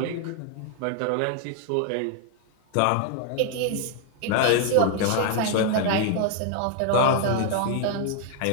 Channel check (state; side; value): different; both; correlation 0.00